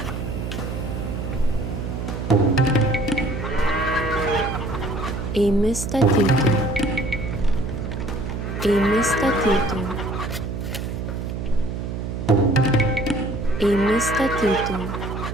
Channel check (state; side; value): noise; right; hum, 5 dB below the sound